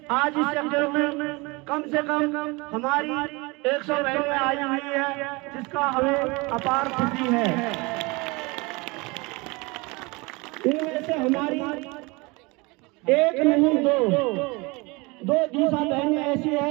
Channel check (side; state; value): left; quieter; 25.9 dB